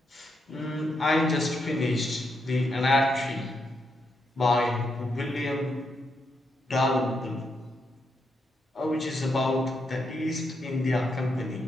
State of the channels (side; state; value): both; normal; correlation 0.81